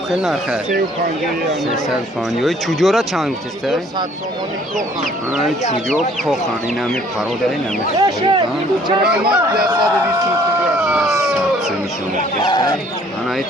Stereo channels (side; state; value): both; normal; correlation 0.58